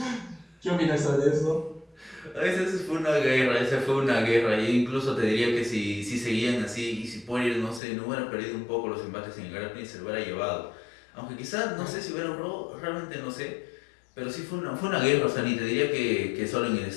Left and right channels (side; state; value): right; drops out; at 7.8 s